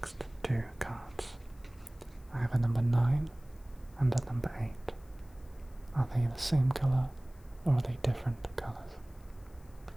2 cards? I have a number 9 and a number 8. Are they the same colour or are they different colours?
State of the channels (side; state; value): left; noise; hiss, 29 dB below the sound